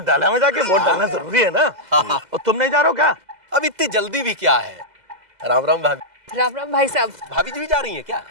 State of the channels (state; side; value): late; left; 2.0 ms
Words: डाला में जाके, वोट डालना जरूरी है ना। और तुम नहीं जा रहे हो क्या? अब इतनी जल्दी भी क्या है? राम राम भाभी। राम राम भाई साहब। भाभी जी भी जा रही हैं क्या?